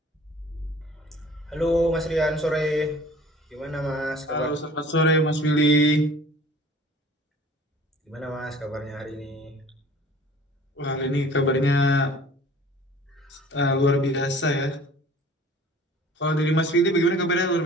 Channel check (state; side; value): normal; both; correlation 0.48